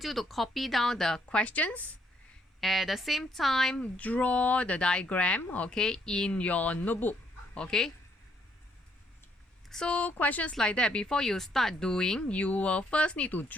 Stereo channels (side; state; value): both; normal; correlation 0.71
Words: you to copy down the questions. At the same time, draw the diagram, okay, in your notebook, okay. So questions like that, before you start doing, you will first need to